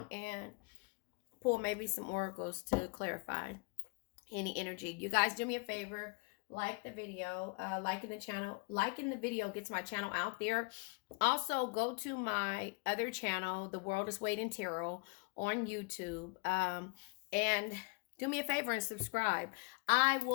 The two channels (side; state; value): right; quieter; 30.3 dB